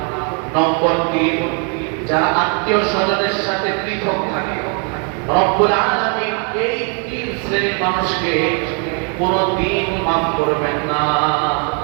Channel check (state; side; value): quieter; left; 38.7 dB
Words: নম্বর 3, যারা আত্মীয় স্বজনের সাথে পৃথক থাকে, রব্বুল আলামিন এই 3 শ্রেণীর মানুষকে কোনদিন মাফ করবেন না।